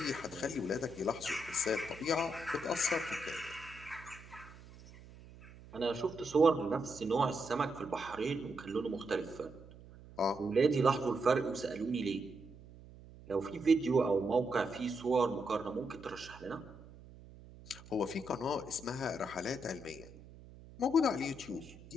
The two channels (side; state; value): right; noise; hum, 19 dB below the sound